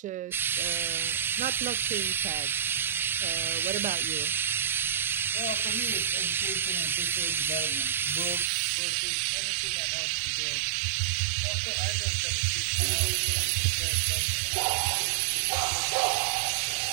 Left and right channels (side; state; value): left; drops out; at 8.5 s